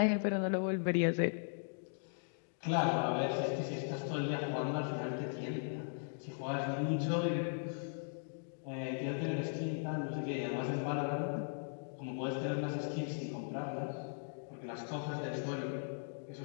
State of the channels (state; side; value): silent; right; digital silence